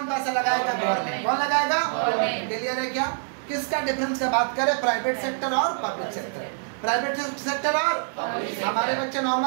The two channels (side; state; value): left; silent; digital silence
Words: पैसा लगाएगा? गवर्नमेंट। कौन लगाएगा? क्लियर है क्या? किसका डिफरेंस का बात करें? प्राइवेट सेक्टर और पब्लिक सेक्टर। प्राइवेट सेक्टर और हमारे बच्चे